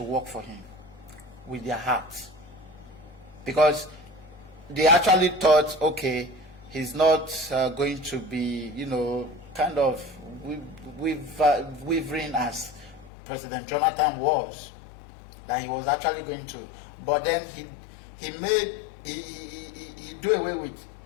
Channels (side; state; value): right; drops out; at 13.1 s